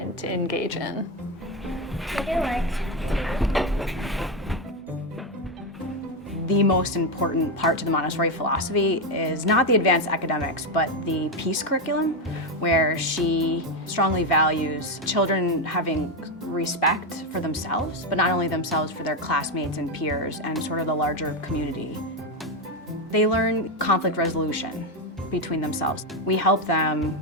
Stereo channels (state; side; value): normal; both; correlation 0.09